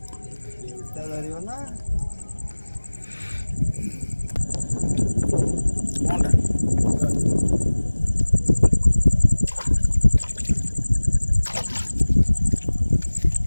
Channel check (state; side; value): inverted; both; correlation -1.00